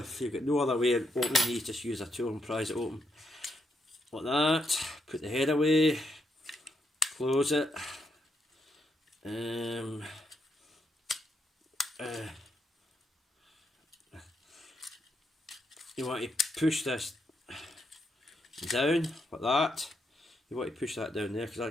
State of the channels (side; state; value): both; normal; correlation 0.79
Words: you've got no other way of opening these, just use a tool and prise it open. Like that. Put the head away. Close it. You want to push this down like that. You want to push that down there because